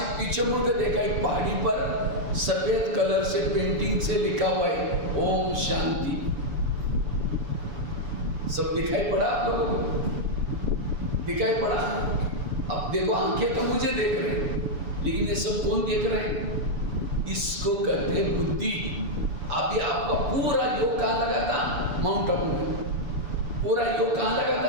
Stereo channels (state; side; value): late; left; 7.0 ms